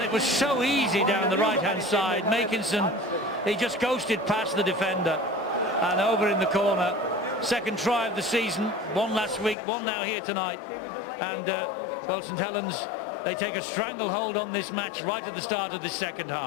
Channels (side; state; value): right; drops out; at 9.6 s